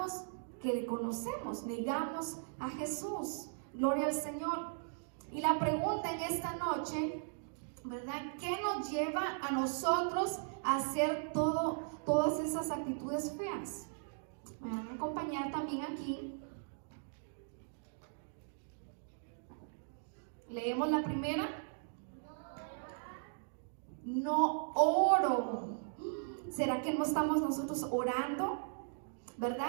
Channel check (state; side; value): silent; left; digital silence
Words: que le conocemos, negamos a Jesús. Gloria al Señor. Y la pregunta en esta noche, ¿verdad? ¿Qué nos lleva a nosotros a hacer todas esas actitudes feas? Me van a acompañar también aquí. Leemos la primera. No oro. ¿Será que no estamos nosotros orando?